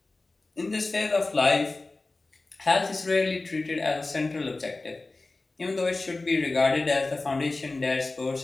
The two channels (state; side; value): quieter; right; 3.3 dB